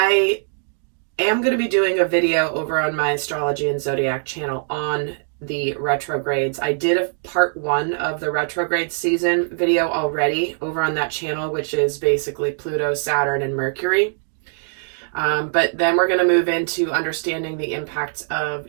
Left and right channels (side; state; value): left; silent; digital silence